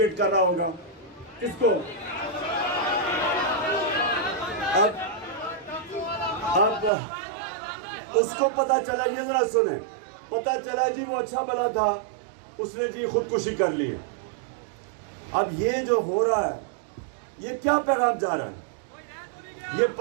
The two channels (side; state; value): left; drops out; at 6.9 s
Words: कर रहा होगा, किसको। अब उसको पता चला, ये जरा सुने, पता चला जी वो अच्छा भला था, उसने जी खुदकुशी कर ली है। अब ये जो हो रहा है, ये क्या पैगाम जा रहा है, ये